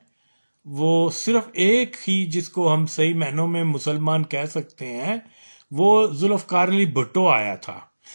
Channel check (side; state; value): both; inverted; correlation -1.00